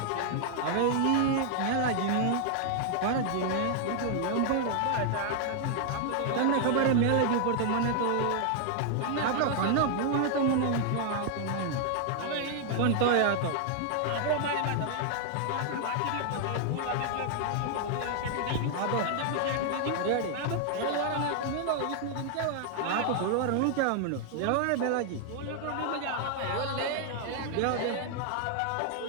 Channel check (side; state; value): both; different; correlation 0.00